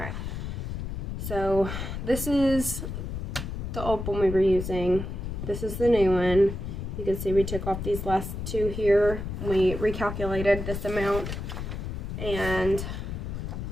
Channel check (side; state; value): left; noise; rumble, 5 dB below the sound